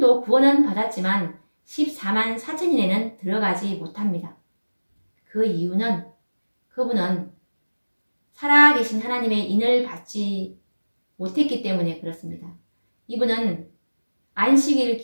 구원은 받았지만 14만 4천인에는 들어가지 못합니다. 그 이유는 그분은 살아계신 하나님의 인을 받지 못했기 때문에 그렇습니다. 이분은 안식일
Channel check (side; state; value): both; inverted; correlation -1.00